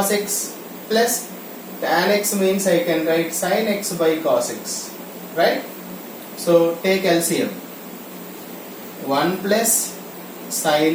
x plus tan x means I can write sin x by cos x, right? So take LCM. 1 plus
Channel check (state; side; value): identical; both; correlation 1.00